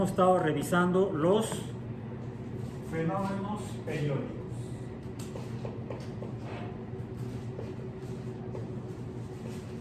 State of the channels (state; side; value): identical; both; correlation 1.00